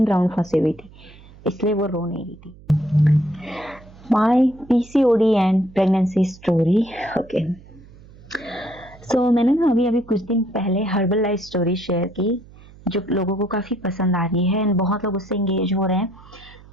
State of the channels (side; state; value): right; noise; hum, 22 dB below the sound